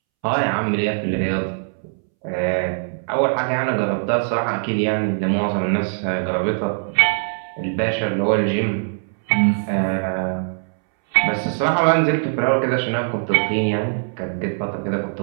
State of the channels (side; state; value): left; silent; 65 dB below the other